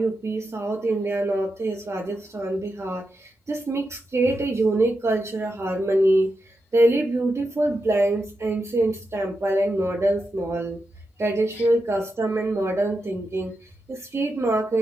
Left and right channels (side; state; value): both; normal; correlation 0.87